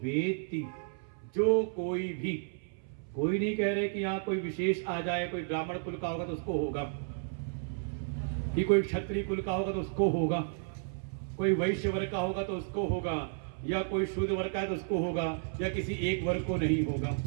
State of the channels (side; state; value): left; silent; 56 dB below the other